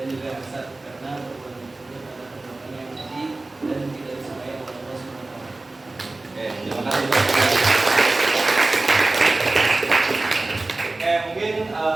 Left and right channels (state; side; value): quieter; left; 3.1 dB